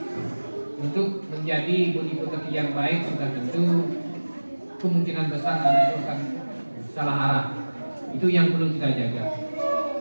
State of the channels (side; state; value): both; inverted; correlation -1.00